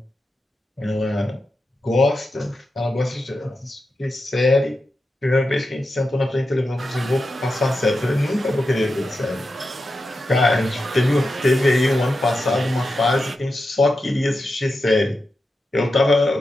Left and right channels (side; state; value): both; normal; correlation 0.90